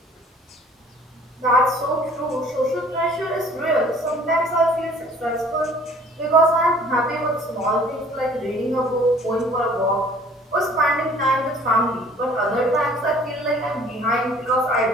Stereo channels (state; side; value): normal; both; correlation 0.52